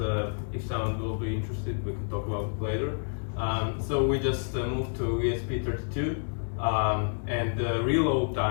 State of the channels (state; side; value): silent; right; 59 dB below the other